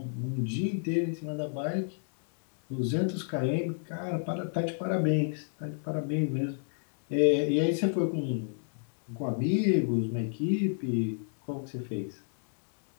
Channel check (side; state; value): right; silent; digital silence